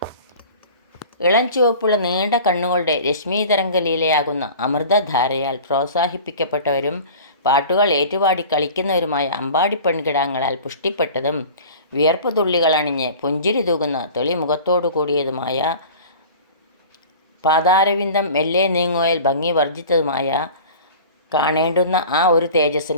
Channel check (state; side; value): inverted; both; correlation -0.40